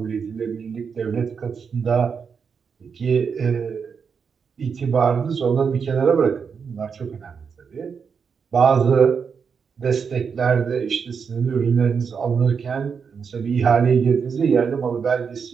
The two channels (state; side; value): quieter; left; 6.2 dB